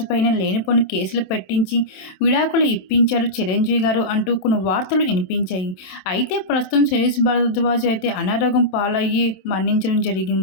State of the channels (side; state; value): right; late; 27 ms